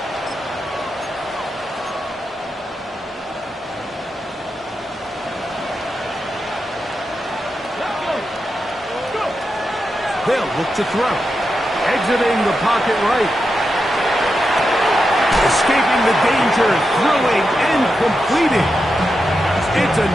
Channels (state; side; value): normal; both; correlation 0.88